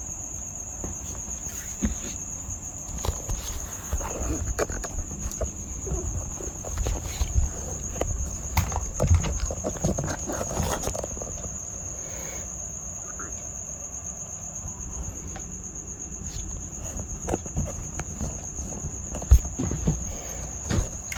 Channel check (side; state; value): both; identical; correlation 1.00